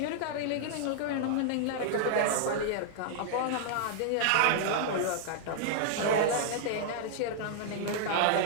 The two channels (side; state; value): both; different; correlation -0.01